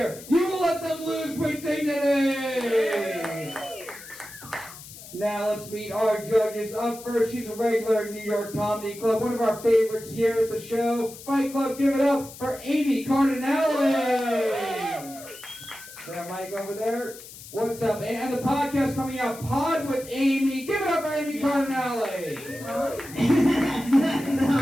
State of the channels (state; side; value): noise; left; hiss, 16 dB below the sound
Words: you will let them lose with dignity! Now let's meet our judges. Up first, she's a regular in New York Comedy Club, one of our favorites here at the show. Fight Club, give it up for Amy Cardinale! That mic over there. What's up? And the podcast coming out, Pod with Amy. Give it up for Amy Cardinale!